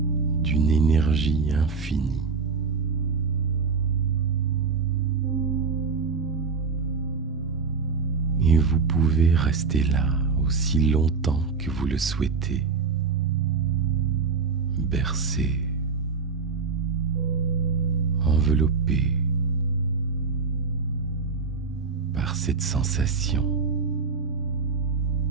d'une énergie infinie. Et vous pouvez rester là aussi longtemps que vous le souhaitez, bercé, enveloppé par cette sensation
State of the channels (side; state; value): left; quieter; 5.0 dB